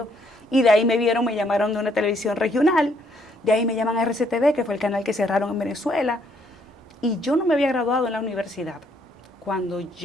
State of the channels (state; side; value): normal; both; correlation 0.69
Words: y de ahí me llamaron de una televisión regional, de ahí me llaman a RCTV, que fue el canal que cerraron en Venezuela, y yo no me había graduado en la universidad cuando